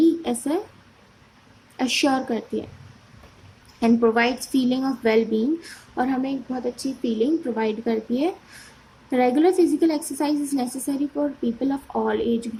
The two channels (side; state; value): both; identical; correlation 1.00